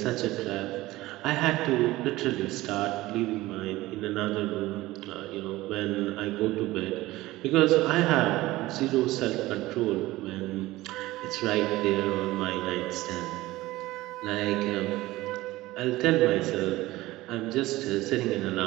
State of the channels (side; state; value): left; quieter; 18.1 dB